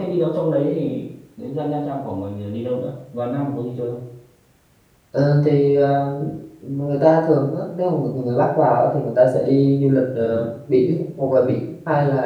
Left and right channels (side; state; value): both; identical; correlation 1.00